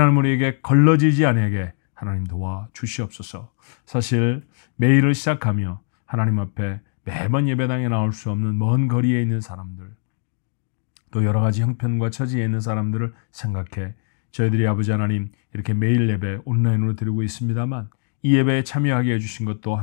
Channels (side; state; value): right; silent; digital silence